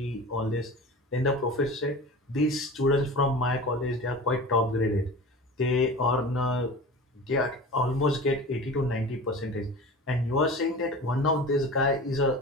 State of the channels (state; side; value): normal; both; correlation 0.35